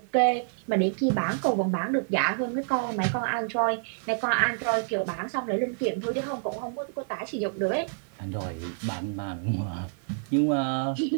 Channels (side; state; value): left; silent; 59 dB below the other